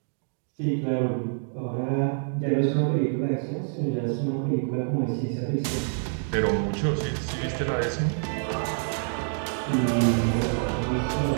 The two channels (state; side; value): silent; left; digital silence